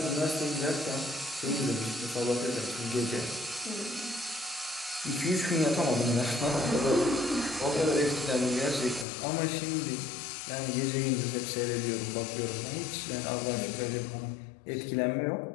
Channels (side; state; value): right; drops out; at 9.1 s